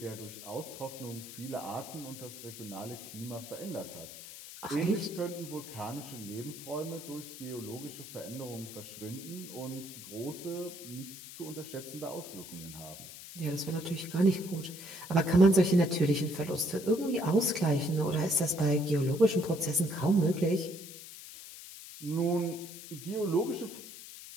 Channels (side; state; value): left; noise; hiss, 13 dB below the sound